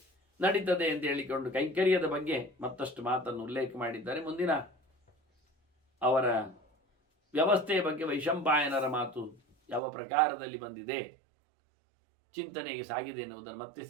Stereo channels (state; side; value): drops out; left; at 9.8 s